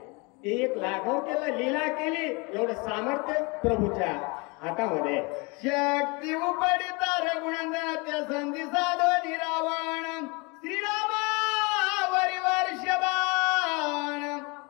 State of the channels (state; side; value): quieter; right; 28.7 dB